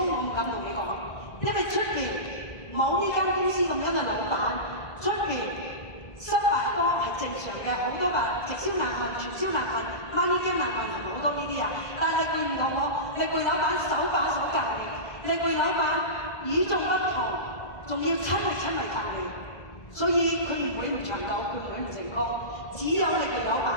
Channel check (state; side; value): late; right; 2.0 ms